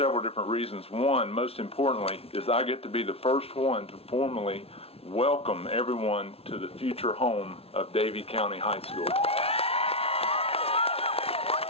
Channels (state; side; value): late; right; 0.29 ms